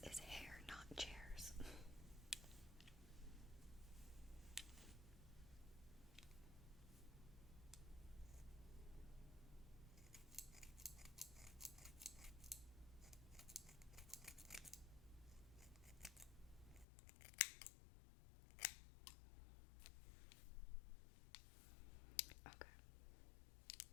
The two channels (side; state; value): right; drops out; at 16.9 s